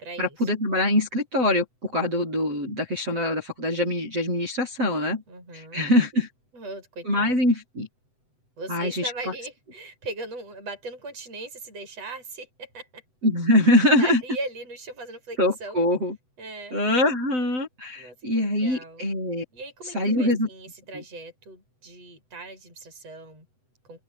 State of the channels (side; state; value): left; late; 7.9 ms